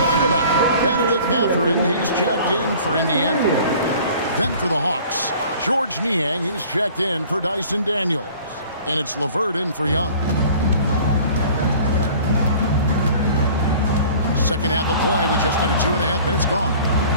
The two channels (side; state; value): both; inverted; correlation -0.48